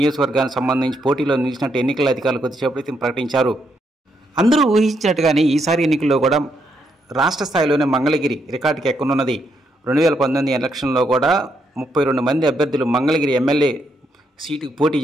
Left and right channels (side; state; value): both; normal; correlation 0.77